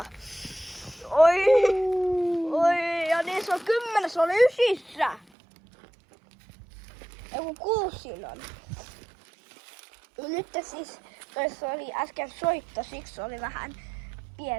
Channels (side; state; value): left; drops out; at 5.2 s